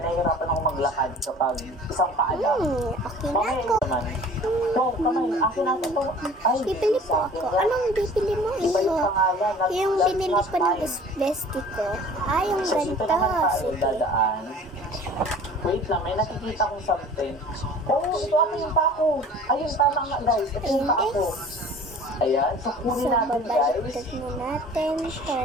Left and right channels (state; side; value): normal; both; correlation 0.46